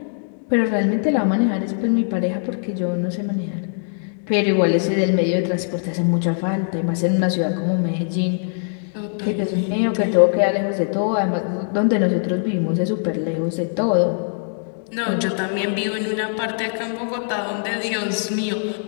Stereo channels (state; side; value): silent; right; digital silence